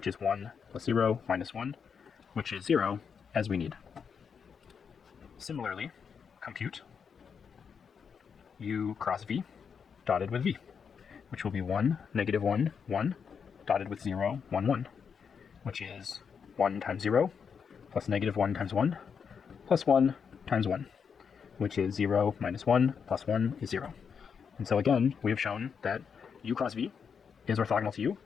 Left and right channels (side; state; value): right; quieter; 6.5 dB